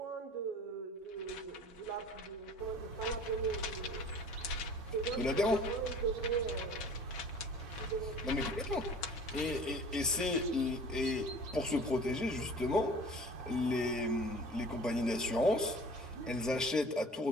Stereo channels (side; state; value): both; normal; correlation 0.45